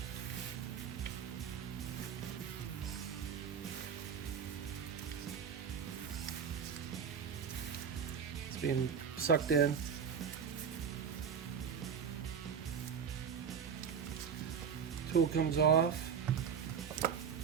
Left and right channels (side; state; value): left; quieter; 7.1 dB